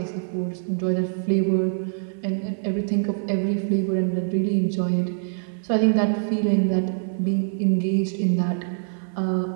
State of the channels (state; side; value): silent; left; 58 dB below the other